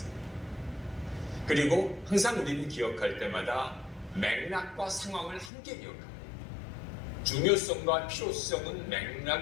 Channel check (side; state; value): right; drops out; at 5.5 s